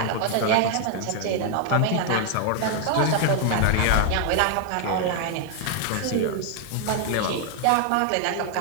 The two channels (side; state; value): both; different; correlation 0.00